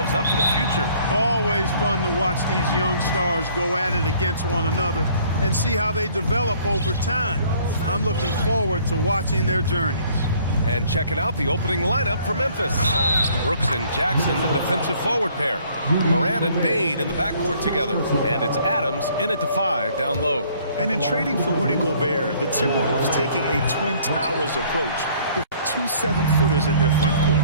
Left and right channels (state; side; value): inverted; both; correlation -0.59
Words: up for the future. Always fun to watch these young stars go at it against one another and see how they develop over time. I'm looking forward to watching their journeys. And checking out the opening lineup for Memphis. Brooks and Jackson, the defensive forward pair. Morant and Bane in the backcourt together. And it's Adams in at the 5 down low. And in trading for Rudy Gobert, the Timberwolves taking a Twin Towers approach with 2 7-footers in their front court.